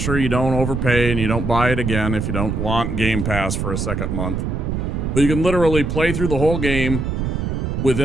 you don't overpay and you don't buy it again if you don't want Game Pass for a second month. But you can literally play through the whole game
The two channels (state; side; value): noise; right; rumble, 2 dB below the sound